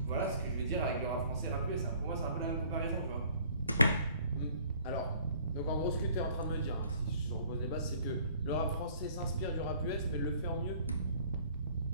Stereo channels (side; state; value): both; inverted; correlation -0.55